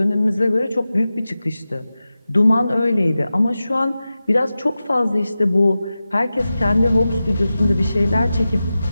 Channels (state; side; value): inverted; both; correlation -0.94